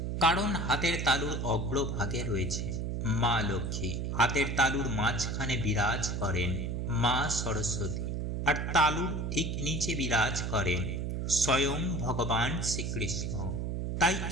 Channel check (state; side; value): noise; right; hum, 2 dB below the sound